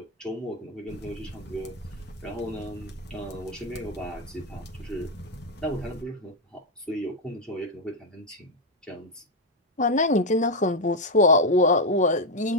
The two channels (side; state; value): both; normal; correlation 0.04